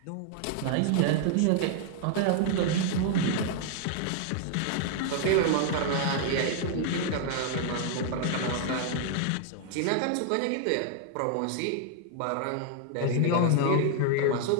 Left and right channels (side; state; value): both; different; correlation 0.00